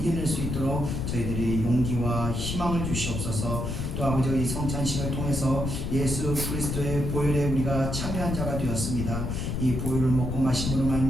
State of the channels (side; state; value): left; noise; rumble, 2 dB below the sound